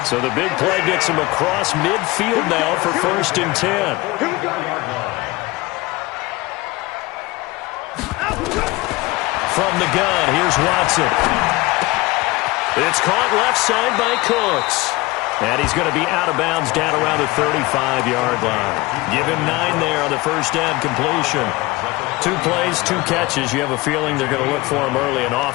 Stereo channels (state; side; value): quieter; right; 21.7 dB